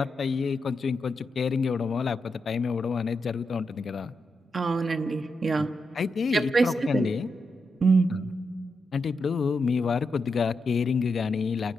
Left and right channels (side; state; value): both; normal; correlation 0.85